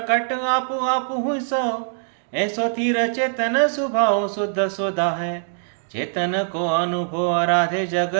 आपु आपु सो, ऐसो तीर चेतन स्वभाव शुद्ध सोदा है। चेतन को अनुभव आराधे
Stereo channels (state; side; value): silent; left; digital silence